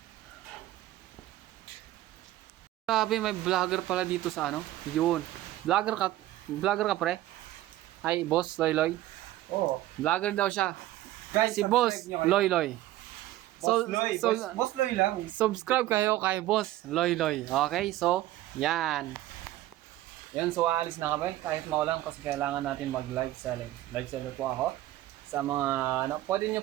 Grabe, may vlogger pala dito sa ano. Yun. Vlogger ka pre? Ay, Boss Loy Loy. Oo. Vlogger daw siya. Guys, Si Boss Loy Loy. Boss Loy. Boss Loy lang. Subscribe kayo kay Boss Loy Loy. Okay? So, yan. Yan, so aalis na kami. Kahit maulan kasi kailangan natin mag live selling. Live seller po ako. sa mga, ano, pwede nyo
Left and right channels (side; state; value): left; quieter; 15.2 dB